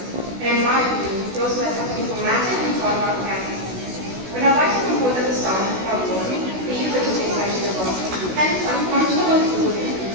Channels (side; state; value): left; late; 16 ms